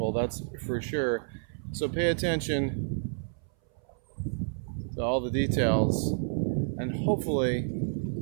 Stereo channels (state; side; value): silent; left; 58 dB below the other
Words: that's for sure. So pay attention to all the details, and hopefully